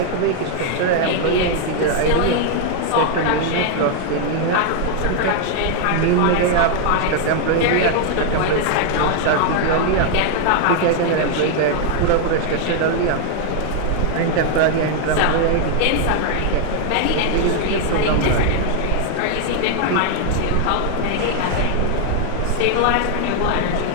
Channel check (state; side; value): different; both; correlation 0.00